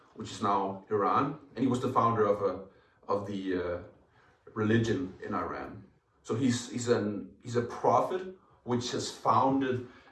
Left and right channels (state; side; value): identical; both; correlation 1.00